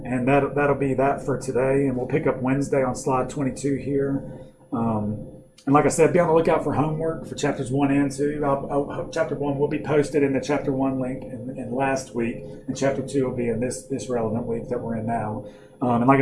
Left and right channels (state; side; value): identical; both; correlation 1.00